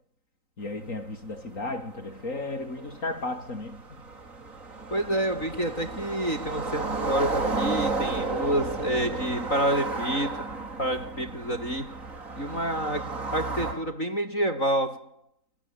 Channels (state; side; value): late; right; 3.9 ms